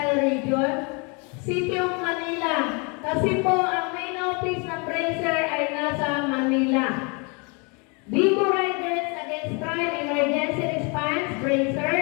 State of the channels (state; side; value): quieter; right; 32.5 dB